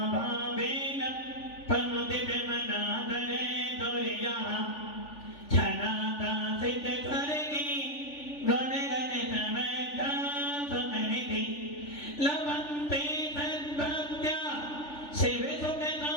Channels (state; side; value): late; right; 3.4 ms